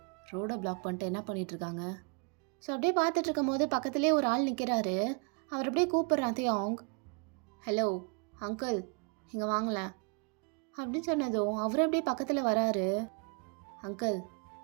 ரோடை பிளாக் பண்ணிட்டு என்ன பண்ணிகிட்ருக்காங்க? ஸோ அப்படியே பார்த்துட்டு இருக்கும் போது பக்கத்துலேயே ஒரு ஆள் நிற்கிறாரு. அவர் அப்படியே கூப்பிட்றான் தியாங். ஹலோ அங்கிள், இங்கே வாங்கலேன் அப்படின்னு சொன்னதும் அவர் அப்படியே பக்கத்தில் வராரு. அங்கிள்,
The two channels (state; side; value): quieter; left; 36.2 dB